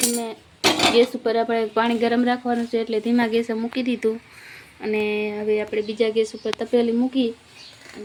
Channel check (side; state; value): both; identical; correlation 1.00